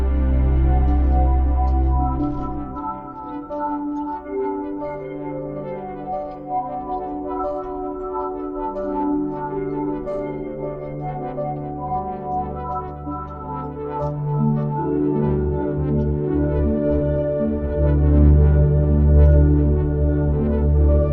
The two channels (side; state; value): both; identical; correlation 1.00